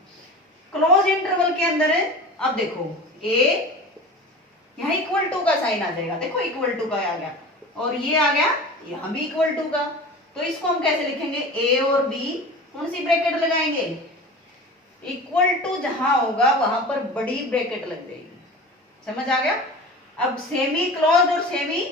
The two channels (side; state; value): both; normal; correlation 0.35